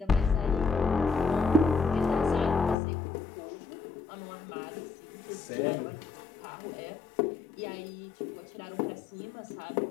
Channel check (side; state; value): right; drops out; at 2.8 s